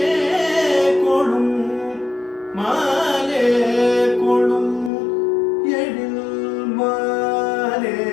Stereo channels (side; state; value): right; drops out; at 4.9 s